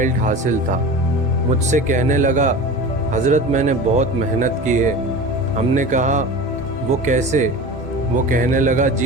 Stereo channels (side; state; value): both; normal; correlation 0.33